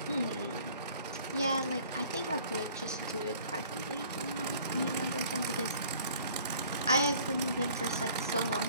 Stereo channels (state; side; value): inverted; both; correlation -0.53